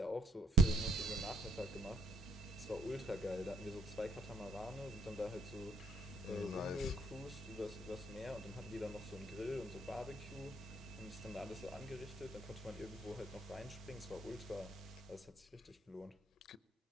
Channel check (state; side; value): normal; both; correlation 0.65